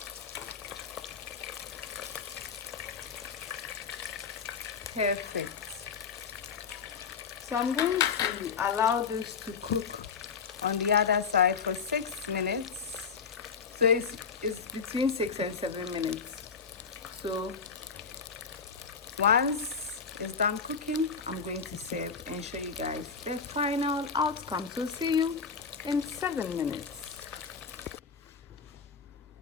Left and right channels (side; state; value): right; quieter; 5.8 dB